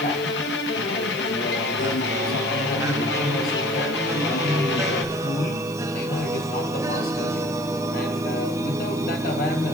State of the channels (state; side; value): noise; left; hiss, 20 dB below the sound